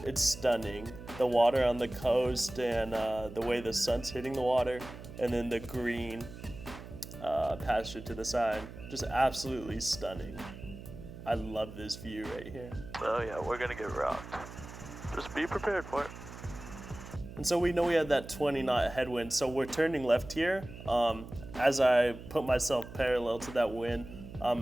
stunning. The water on the coast and the way the sun's hitting the water, and then the green that pasture to the side. Just absolutely stunning. I love this view right here. Oh yeah, we're gonna get rocked. Just be prepared for it. And so we know we had that 20 knot headwind, so we're turning left here. As I put myself parallel to that wind,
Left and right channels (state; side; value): noise; right; hum, 13 dB below the sound